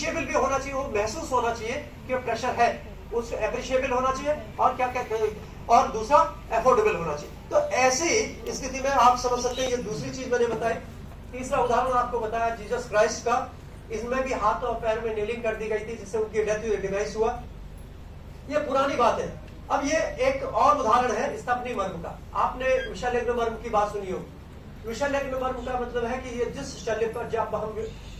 भी होना चाहिए, वो महसूस होना चाहिए कि प्रेशर है, उस एप्रिशिएबल होना चाहिए, और क्या कहते हैं, और दूसरा एफोर्डेबल होना चाहिए। तो ऐसी स्थिति में आप समझ सकते हैं, ये दूसरी चीज मैंने बताई। तीसरा उदाहरण आपको बताया जीसस क्राइस्ट का, इसमें भी हाथ और पैर में नेलिंग कर दी गई थी, जिससे उनकी डेथ डिवाइस हुआ। ये पुरानी बात है। अब ये एक और उदाहरण है स्तपनी मर्म का। आपने विषालग्न मर्म की बात सुनी हो। विषालग्न मर्म का मतलब है कि ये जिस शल्य पर जब हम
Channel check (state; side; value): identical; both; correlation 1.00